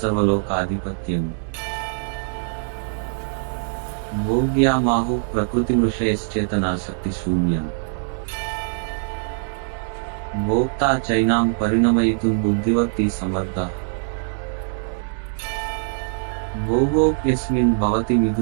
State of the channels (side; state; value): left; silent; 62 dB below the other